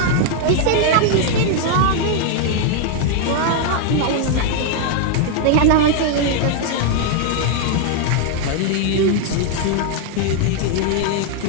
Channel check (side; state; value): both; different; correlation 0.00